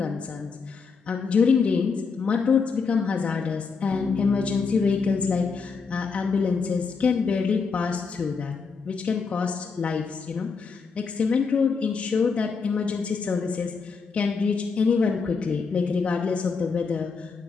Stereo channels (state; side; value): quieter; right; 5.1 dB